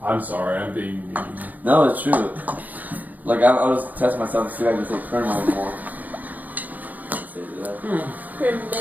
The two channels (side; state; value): left; late; 0.081 ms